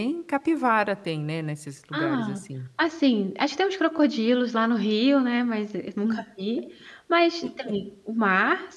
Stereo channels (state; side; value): identical; both; correlation 1.00